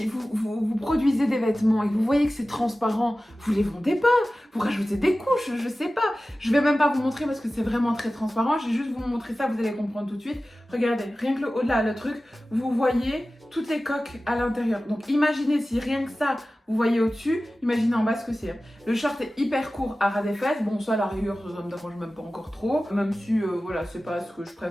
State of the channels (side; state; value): both; normal; correlation 0.96